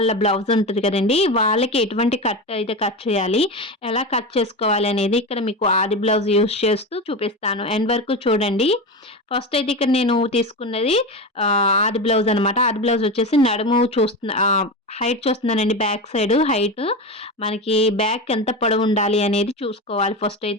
బ్లౌజ్ ఉంటది కదండీ! వాళ్ళకి ఎటువంటి కట్ అయితే కట్ చేయాలి, ఎలా కట్ చేసుకోవాలి అనేది ఇక్కడ మీకు ఆది బ్లౌజ్ యూజ్ చేస్తూ చూపిస్తాను. ఎండ్ వరకు చూడండి. ఫస్ట్ అయితే ఇక్కడ నేను తీసుకున్నది ఆది బ్లౌజ్ అనమాట. ఆది బ్లౌజ్ వచ్చేసి నడుము హైట్ చూస్తున్నానండి, బ్యాక్ సైడ్ హైట్. మనకి బ్యాక్ ఎంత పొడవుండాలి అనేది చూసుకోవాలి. ఫస్ట్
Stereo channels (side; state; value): both; normal; correlation 0.21